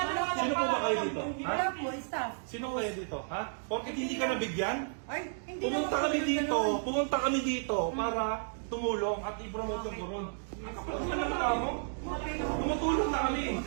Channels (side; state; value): left; silent; digital silence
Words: naman? Sino po ba kayo dito? Ha? Wala po, staff. Sino kayo dito? Ha? Porket hindi ka nabigyan? Ay, hindi Pumunta naman kami po dito, ganun. pumunta kami dito para tumulong at i-promote yung Coron. Ang kapal naman mo? Tumutulong na kami.